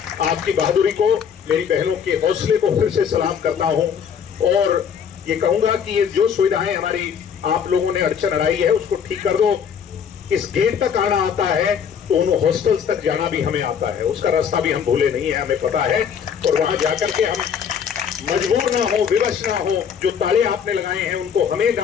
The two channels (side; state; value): right; quieter; 7.6 dB